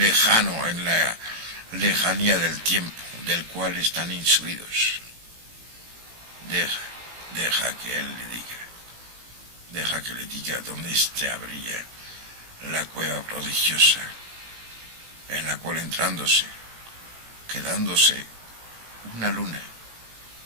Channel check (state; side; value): late; left; 18 ms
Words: en la lejanía del tiempo del cual están insuidos. Deja que él le diga. Deja que le diga dónde se abría la cueva prodigiosa, en la cual entrándose, quedándose una luna,